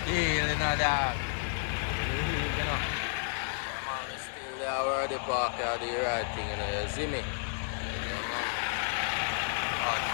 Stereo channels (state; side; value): silent; right; digital silence